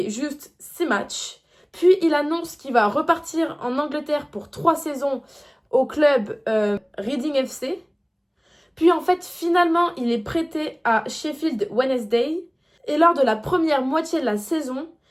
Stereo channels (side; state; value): both; identical; correlation 1.00